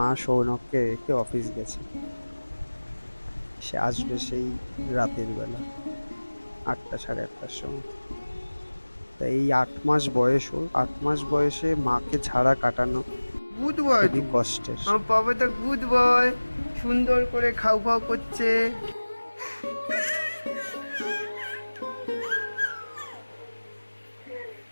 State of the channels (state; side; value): inverted; both; correlation -1.00